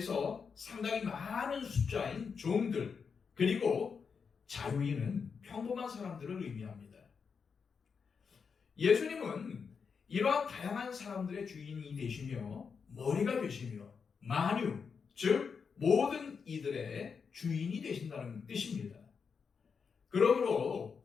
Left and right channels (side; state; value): right; quieter; 5.9 dB